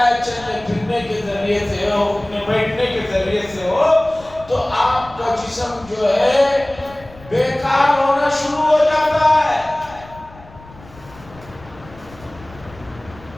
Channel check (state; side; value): noise; left; rumble, 21 dB below the sound